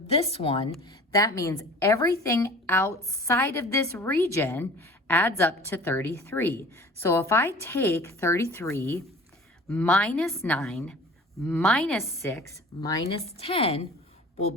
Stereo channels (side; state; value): both; normal; correlation 0.44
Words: one, that means everything outside of this region adds up to 33. So if I take 33 minus 9 minus 6 minus 10, we'll